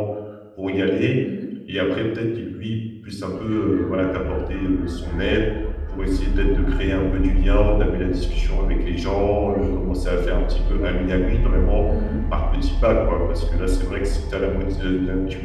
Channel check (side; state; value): both; identical; correlation 1.00